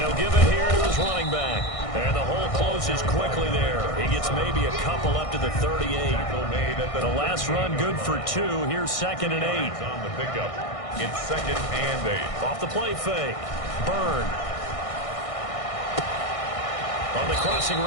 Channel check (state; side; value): late; right; 1.6 ms